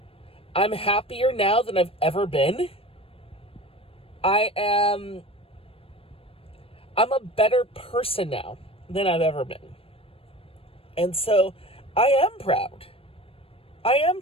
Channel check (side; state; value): right; late; 0.27 ms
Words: I'm happier now than I've ever been. I'm a better person now than I've ever been. And so I am proud. I am